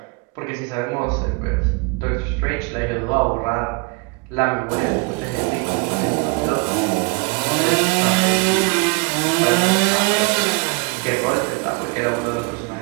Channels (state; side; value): quieter; left; 30.2 dB